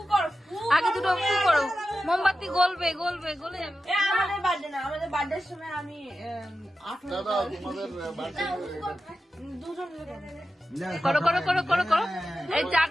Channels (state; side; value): normal; both; correlation 0.92